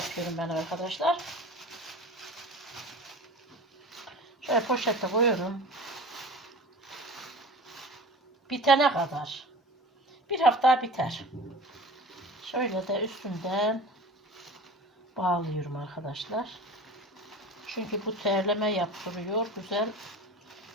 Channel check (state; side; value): normal; both; correlation 0.37